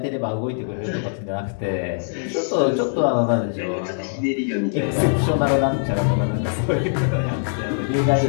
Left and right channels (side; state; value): right; silent; digital silence